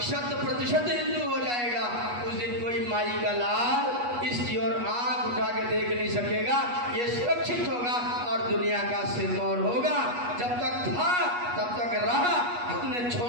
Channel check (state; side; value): late; left; 8.3 ms